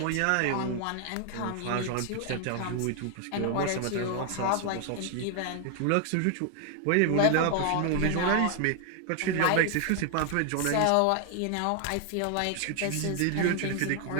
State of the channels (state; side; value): different; both; correlation 0.00